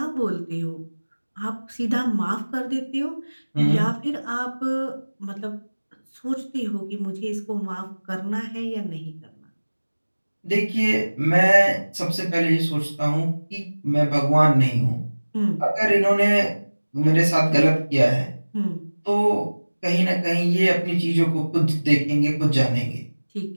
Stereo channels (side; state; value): both; inverted; correlation -1.00